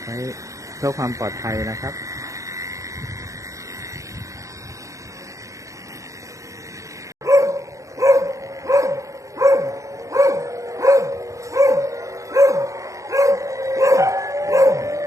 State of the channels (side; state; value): left; late; 0.15 ms